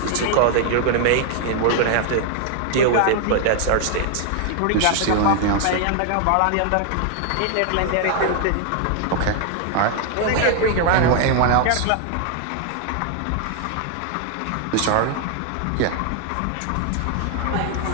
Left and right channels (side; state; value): both; different; correlation 0.00